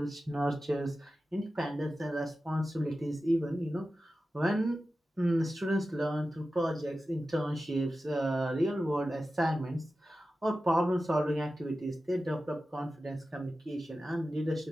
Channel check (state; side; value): normal; both; correlation 0.94